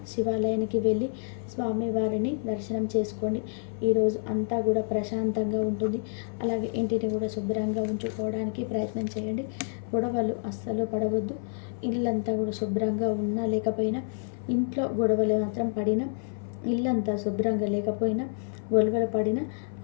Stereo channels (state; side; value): silent; right; 56 dB below the other